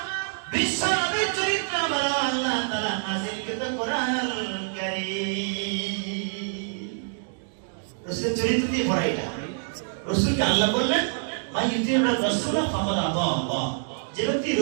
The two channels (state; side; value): silent; left; digital silence